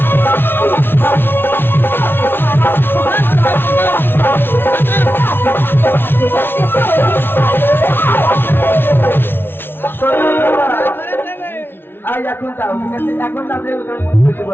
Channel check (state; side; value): late; right; 0.11 ms